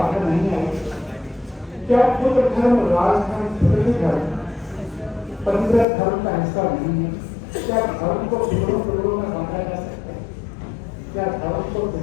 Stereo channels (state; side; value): drops out; right; at 5.9 s